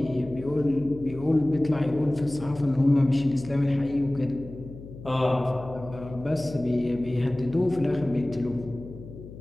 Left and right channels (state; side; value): noise; left; hum, 15 dB below the sound